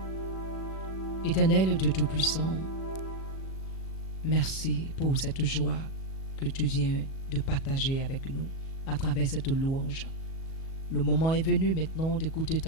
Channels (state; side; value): late; right; 37 ms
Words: Éternel Dieu Tout-Puissant, merci pour cette joie que tu viens de partager avec nous à travers cette louange. Le moment est venu maintenant d'écouter